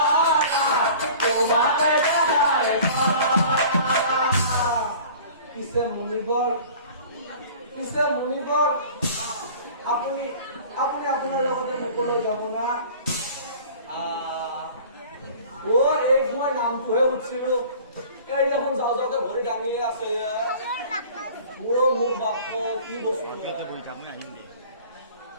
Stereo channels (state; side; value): inverted; both; correlation -0.45